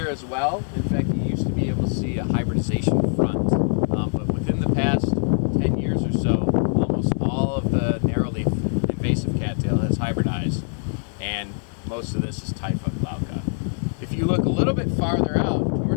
as well. In fact, you used to be able to see a hybridization front, but within the past 10 years or so, almost all of the narrowleaf invasive cattail has hybridized, and most of this is Typha glauca. If you look a little bit farther out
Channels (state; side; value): silent; right; digital silence